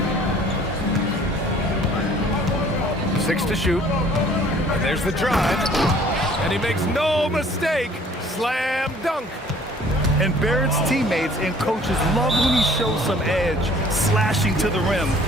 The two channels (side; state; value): both; normal; correlation 0.54